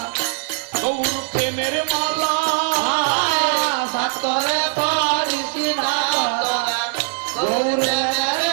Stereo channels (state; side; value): silent; left; 56 dB below the other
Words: গৌর প্রেমের মালা সাত করে পরিসি না তোরা গৌর প্রেমের